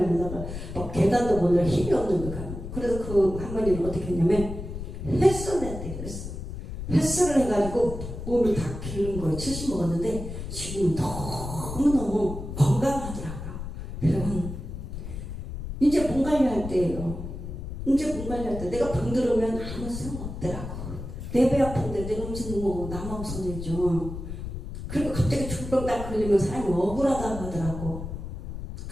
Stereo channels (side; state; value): left; noise; rumble, 8 dB below the sound